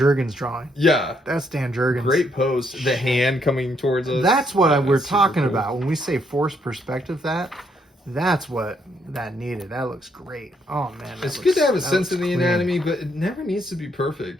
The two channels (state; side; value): normal; both; correlation 0.73